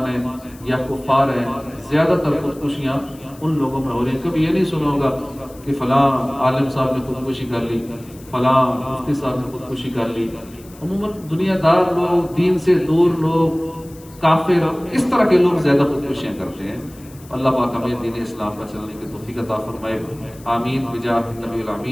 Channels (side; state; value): left; noise; hiss, 23 dB below the sound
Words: ہیں یا کفار ہیں، زیادہ تر خودکشیاں ان لوگوں میں ہو رہی ہیں۔ کبھی یہ نہیں سنا ہوگا کہ فلاں عالم صاحب نے خودکشی کر لی، فلاں مفتی صاحب نے خودکشی کر لی۔ عموماً دنیا دار لوگ، دین سے دور لوگ، کافر، اس طرح کے لوگ زیادہ خودکشیاں کرتے ہیں۔ اللہ پاک ہمیں دین اسلام پر چلنے کی توفیق عطا فرمائے، آمین بجاہ نبی